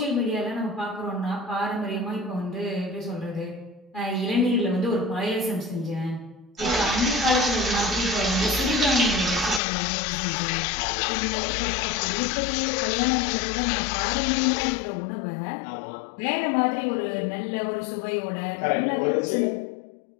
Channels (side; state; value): right; drops out; at 9.6 s